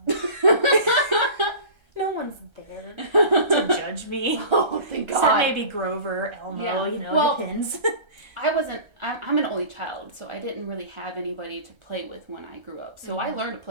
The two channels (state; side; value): late; left; 1.3 ms